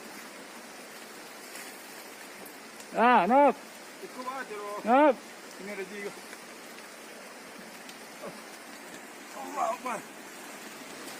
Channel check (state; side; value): identical; both; correlation 1.00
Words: Nop. Ikut aja loh. Nop. Ini ada juga. Allah Akbar.